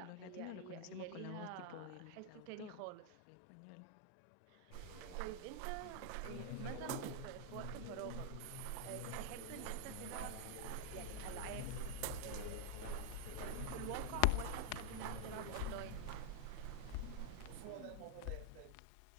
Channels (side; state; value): both; different; correlation 0.00